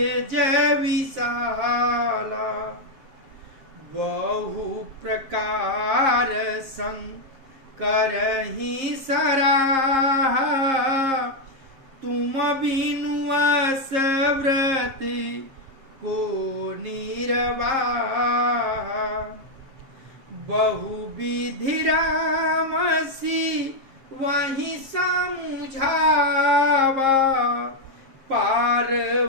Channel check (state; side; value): late; left; 7.5 ms